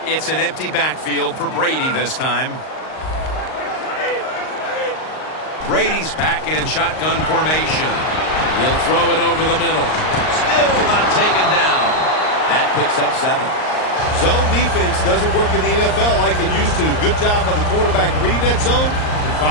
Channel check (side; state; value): right; late; 38 ms